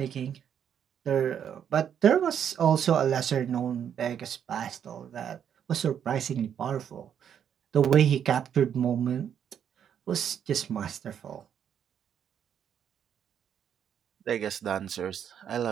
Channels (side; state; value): left; quieter; 8.7 dB